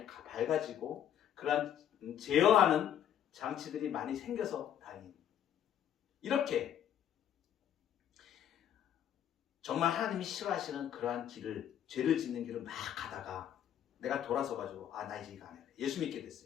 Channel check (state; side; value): quieter; right; 10.0 dB